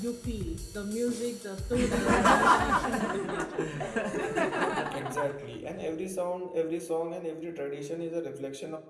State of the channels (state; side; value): identical; both; correlation 1.00